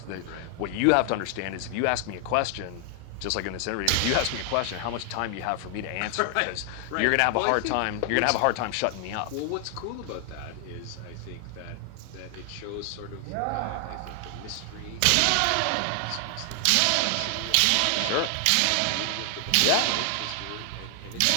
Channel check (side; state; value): both; different; correlation 0.00